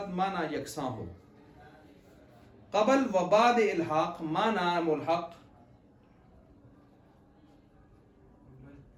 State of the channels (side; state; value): both; identical; correlation 1.00